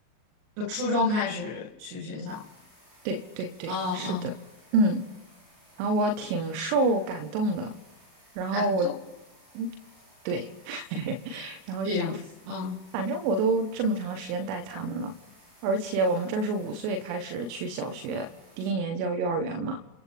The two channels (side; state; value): left; late; 38 ms